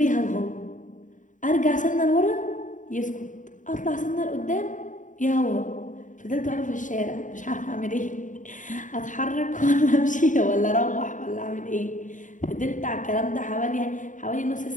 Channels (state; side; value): late; right; 0.37 ms